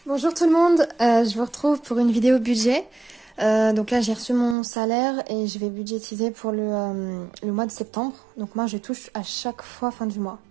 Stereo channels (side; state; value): left; drops out; at 4.5 s